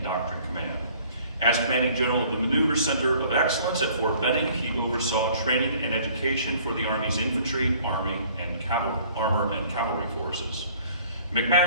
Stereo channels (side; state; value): both; inverted; correlation -0.55